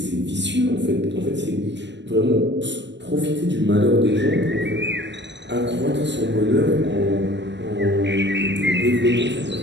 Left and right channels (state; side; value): late; left; 0.52 ms